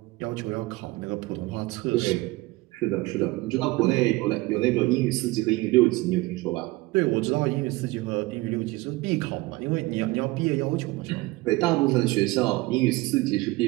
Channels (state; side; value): quieter; left; 21.2 dB